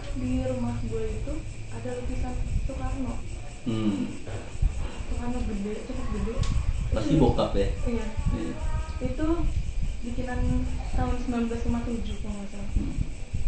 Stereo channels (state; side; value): identical; both; correlation 1.00